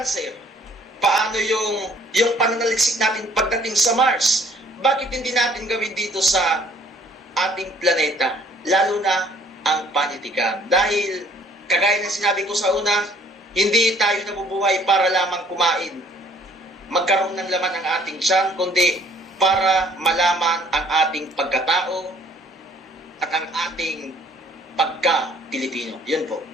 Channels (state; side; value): normal; both; correlation 0.58